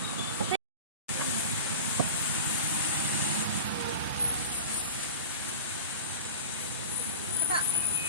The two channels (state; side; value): inverted; both; correlation -0.35